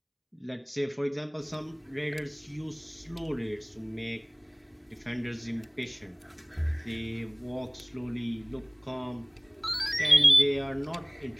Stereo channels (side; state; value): both; identical; correlation 1.00